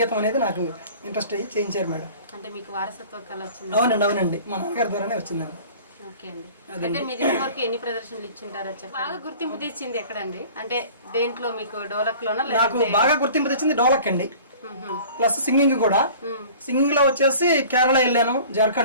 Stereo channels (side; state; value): both; inverted; correlation -0.45